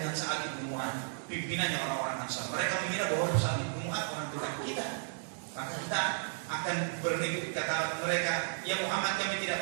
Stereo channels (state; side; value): silent; left; digital silence